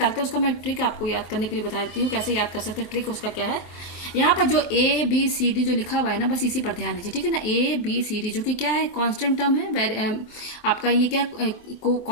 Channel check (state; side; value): late; right; 23 ms